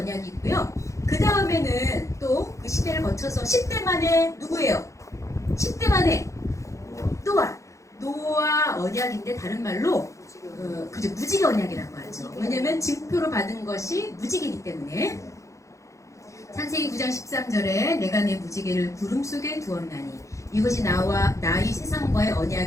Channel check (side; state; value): right; late; 0.15 ms